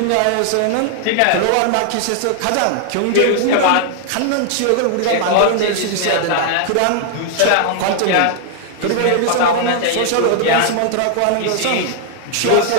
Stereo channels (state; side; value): different; both; correlation 0.00